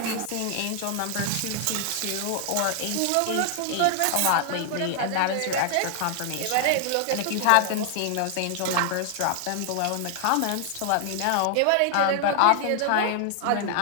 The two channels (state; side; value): different; both; correlation 0.00